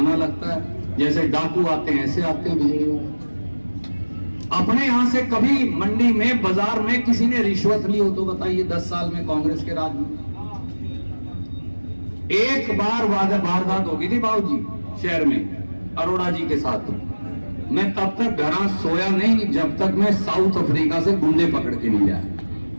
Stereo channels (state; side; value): inverted; both; correlation -1.00